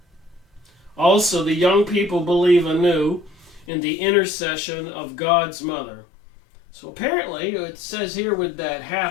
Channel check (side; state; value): right; drops out; at 3.7 s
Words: Also, the young people believe anew in the intercession of God's mother. So apparently, it says here with that